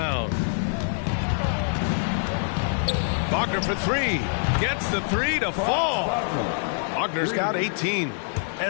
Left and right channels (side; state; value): right; silent; digital silence